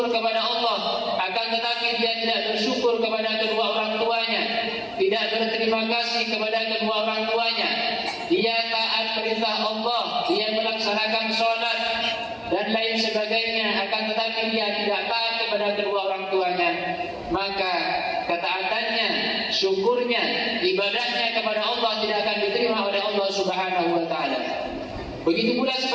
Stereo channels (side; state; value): both; identical; correlation 1.00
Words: kepada Allah akan tetapi dia tidak bersyukur kepada kedua orang tuanya, tidak berterima kasih kepada kedua orang tuanya, dia taat perintah Allah, dia melaksanakan sholat dan lain sebagainya, akan tetapi dia tidak taat kepada kedua orang tuanya, maka ketaatannya, syukurnya, ibadahnya kepada Allah tidak akan diterima oleh Allah Subhanahu wa taala. Begitu pula